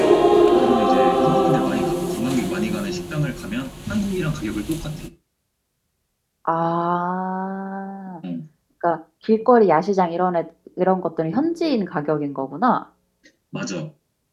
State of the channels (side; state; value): both; identical; correlation 1.00